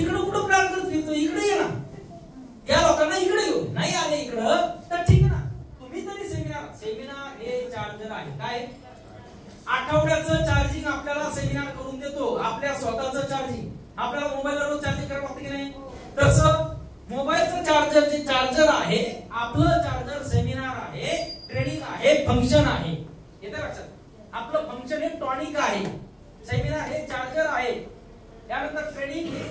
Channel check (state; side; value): identical; both; correlation 1.00